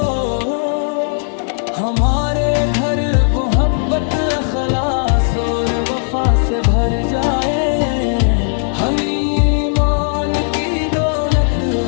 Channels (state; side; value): silent; right; 59 dB below the other